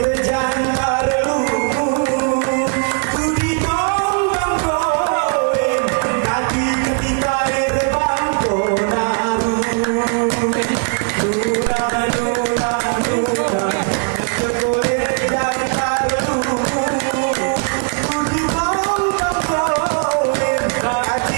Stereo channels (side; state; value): left; quieter; 39.4 dB